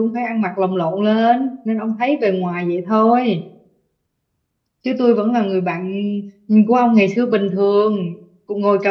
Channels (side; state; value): both; identical; correlation 1.00